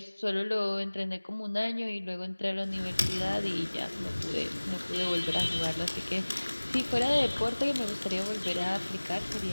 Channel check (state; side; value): inverted; both; correlation -1.00